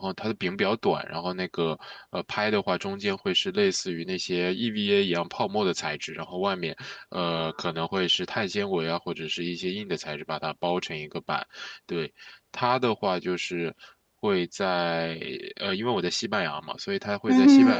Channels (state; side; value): identical; both; correlation 1.00